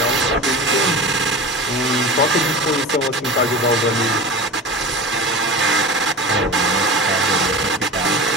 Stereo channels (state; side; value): normal; both; correlation 0.31